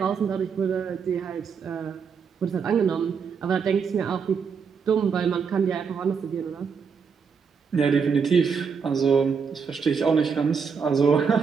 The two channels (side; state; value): left; quieter; 6.0 dB